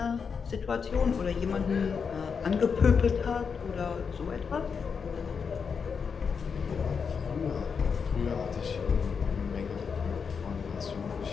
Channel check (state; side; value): quieter; right; 6.0 dB